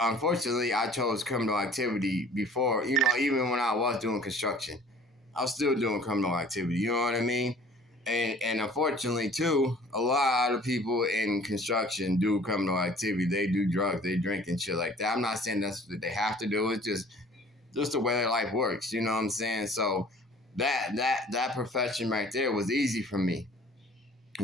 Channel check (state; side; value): normal; both; correlation 0.51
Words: I chose criminal activity before. Even when I was doing construction. I was still doing criminal activity. You know what I mean? And unfortunately too, a lot of people in construction do criminal activity. They do drugs, they drink and shit like that. I'm not saying that's what they have to do. It's just the way their life works. You know what I'm saying? So that profession right there was easy for me.